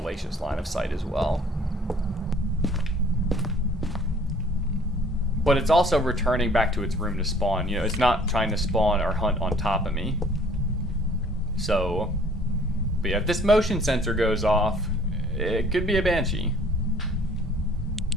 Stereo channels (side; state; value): both; normal; correlation 0.55